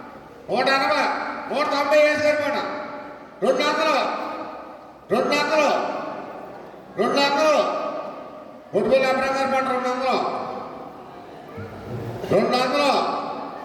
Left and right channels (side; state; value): both; identical; correlation 1.00